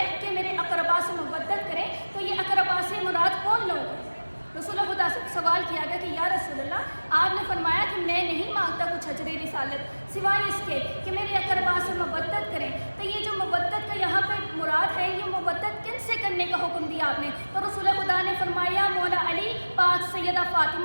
کہ میرے اقربا سے محبت کریں تو یہ اقربا سے مراد کون لوگ ہیں؟ رسول خدا سے سوال کیا گیا کہ یا رسول اللہ آپ نے فرمایا کہ میں نہیں مانگتا کچھ اجر رسالت سوائے اس کے کہ میرے اقربا سے محبت کریں، تو یہ جو محبت کا یہاں پہ مراد ہے یہ محبت کن سے کرنے کا حکم دیا آپ نے؟ تو رسول خدا نے فرمایا مولا علی، پاک سیدہ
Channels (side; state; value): both; inverted; correlation -1.00